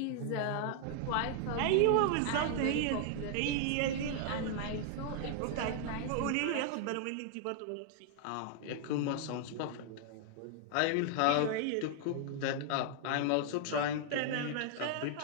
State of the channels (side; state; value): both; different; correlation 0.00